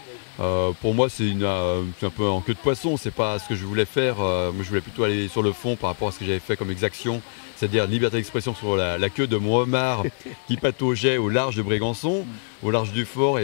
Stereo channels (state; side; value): silent; right; digital silence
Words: Pour moi c'est un peu en queue de poisson, c'est pas ce que je voulais faire, moi je voulais plutôt aller sur le fond par rapport à ce que j'avais fait comme exaction, c'est-à-dire liberté d'expression sur la queue de mon homard qui pataugeait au large de Brégançon, au large du fort,